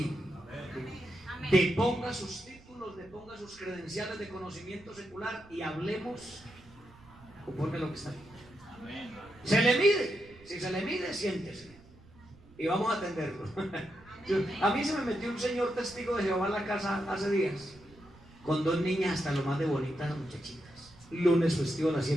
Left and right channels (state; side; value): noise; right; rumble, 24 dB below the sound